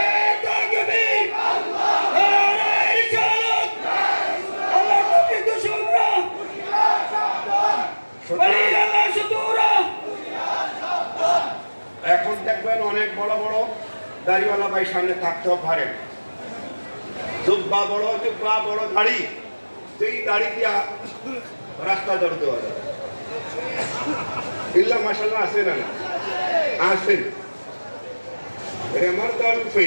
এখন দেখবেন অনেক বড় বড় দাড়িওয়ালা ভাই সামনে থাকতেও পারেন, জুব্বা বড়, জুব্বা বড় দাড়ি, যেই দাড়ি দিয়া রাস্তা দৌড় দেওয়া যায়। ইল্লা মাশাআল্লাহ আছে না? আছেন। আমার দাড়ি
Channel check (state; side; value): inverted; both; correlation -1.00